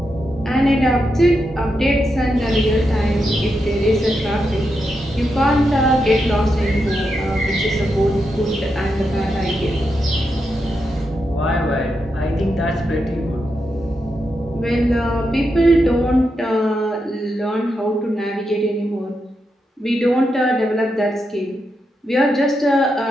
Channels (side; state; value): both; normal; correlation 0.85